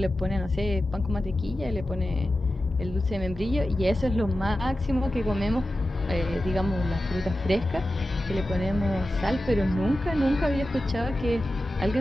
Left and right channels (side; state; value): both; normal; correlation 0.93